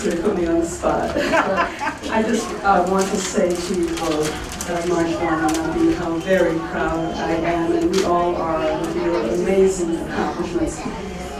to put me on the spot. I just want to say to you both, Marjwan and Nabi, how very proud I am, and we all are, of your amazing accomplishments.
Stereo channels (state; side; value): identical; both; correlation 1.00